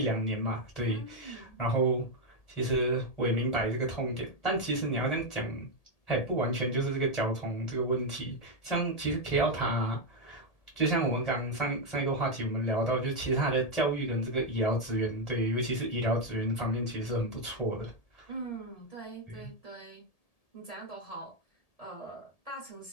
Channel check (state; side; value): late; right; 1.8 ms